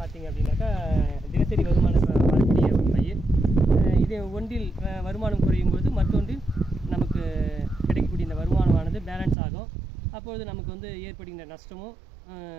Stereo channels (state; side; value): drops out; left; at 9.3 s